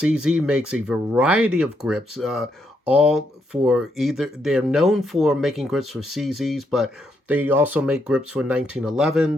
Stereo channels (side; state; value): both; normal; correlation 0.78